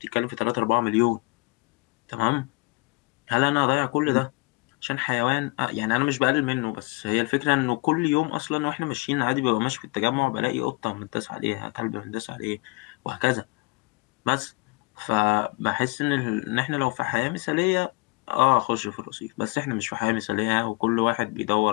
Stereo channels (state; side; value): quieter; right; 27.2 dB